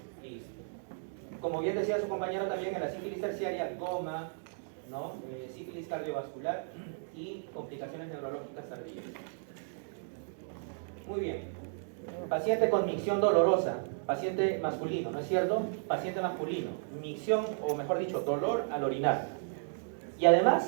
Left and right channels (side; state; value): left; silent; digital silence